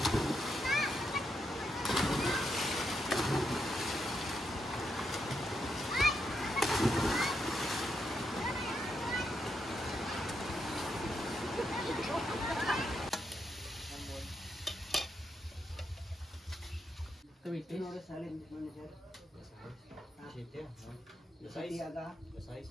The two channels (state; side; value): normal; both; correlation 0.81